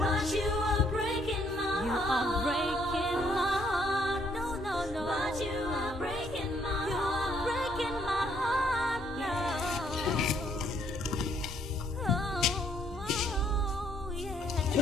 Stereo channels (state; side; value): normal; both; correlation 0.68